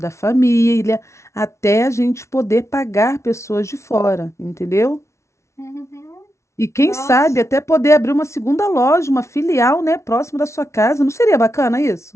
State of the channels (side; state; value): right; late; 0.13 ms